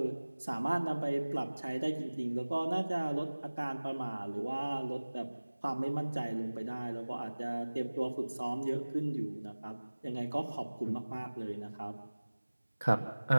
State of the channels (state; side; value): inverted; both; correlation -1.00